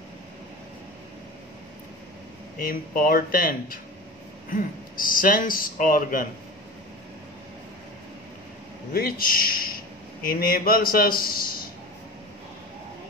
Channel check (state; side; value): normal; both; correlation 0.33